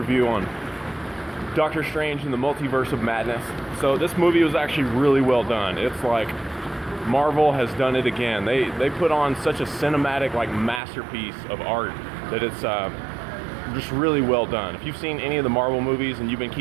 on Doctor Strange and the Multiverse of Madness. So this movie was actually really well done. It's like Marvel has done it again. They put on such a cinematic masterpiece of art that it's just really well done. If you've seen any of the Marvel movies and you've been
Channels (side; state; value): left; drops out; at 10.8 s